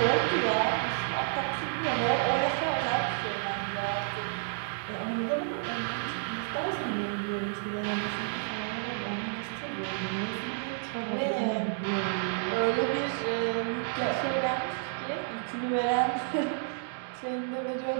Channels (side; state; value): left; silent; digital silence